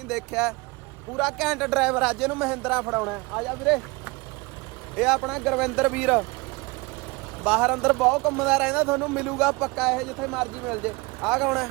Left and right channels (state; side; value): quieter; left; 25.4 dB